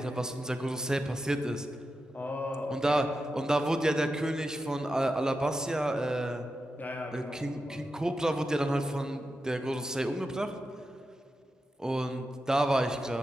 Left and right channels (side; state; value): both; normal; correlation 0.89